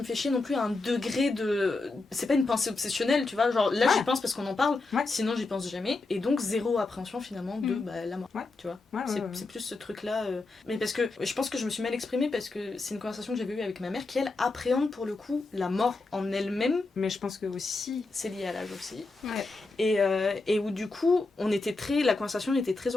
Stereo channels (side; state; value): right; quieter; 3.5 dB